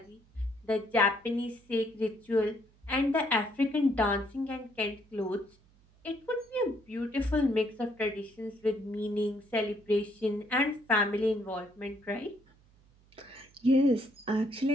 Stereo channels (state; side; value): noise; right; hum, 30 dB below the sound